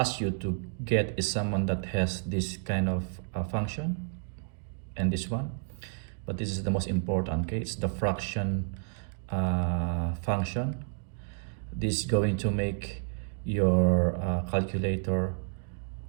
you to get is someone that has this kind of function and this one, but this is the most important. Okay, it's the fraction function. This is going to make your calculator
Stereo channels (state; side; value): silent; left; digital silence